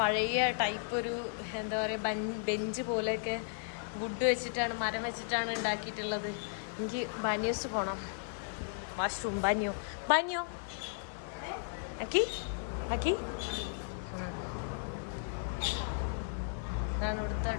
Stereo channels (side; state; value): right; silent; 54 dB below the other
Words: ടൈപ്പ് ഒരു എന്താ പറയുക ബെഞ്ച് പോലെയൊക്കെ വുഡ് വെച്ചിട്ടാണ്, മരം വെച്ചിട്ടാണ് ഉണ്ടാക്കിയിട്ടുള്ളത്. എനിക്ക് ബാനിയോസ് പോകണം. വാഷ്റൂം ബാനിയോ അക്കി ഇതാണ് ഇവിടുത്തെ